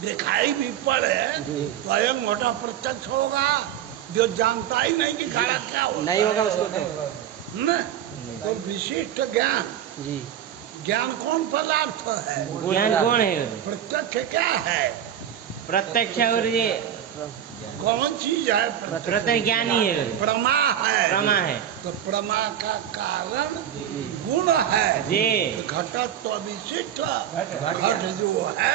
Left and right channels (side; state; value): left; quieter; 10.1 dB